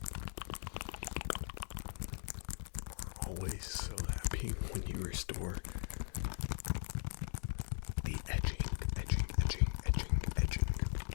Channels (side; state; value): right; silent; 51 dB below the other